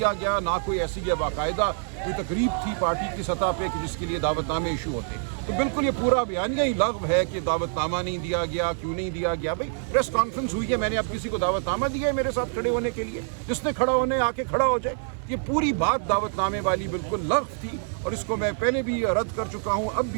गया, ना कोई ऐसी बाकायदा कोई तकरीब थी पार्टी की सतह पे कि जिसके लिए दावतनामे इशू होते। तो बिल्कुल ये पूरा बयानिया ही लग़्व है कि दावतनामा नहीं दिया गया, क्यों नहीं दिया गया। भाई प्रेस कॉन्फ्रेंस हुई है, मैंने अब किसी को दावतनामा दिया है मेरे साथ खड़े होने के लिए? जिसने खड़ा होने आके खड़ा हो जाए। ये पूरी बात दावतनामे वाली बिल्कुल लग़्व थी और इसको मैं पहले भी रद्द कर चुका हूँ, अब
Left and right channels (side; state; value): left; silent; digital silence